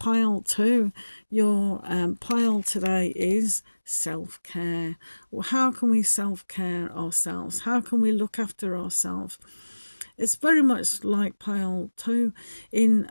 2, your pile today is self-care. Well, how can we self-care ourselves? How can we look after ourselves? It's very much like pile 2 in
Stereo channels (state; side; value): inverted; both; correlation -1.00